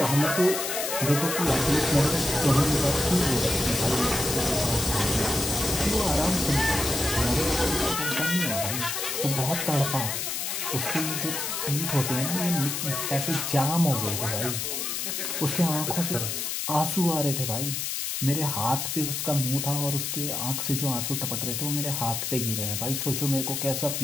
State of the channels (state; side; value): noise; left; hiss, 2 dB below the sound